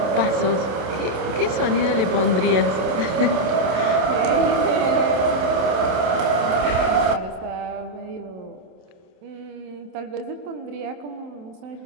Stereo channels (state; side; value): late; left; 27 ms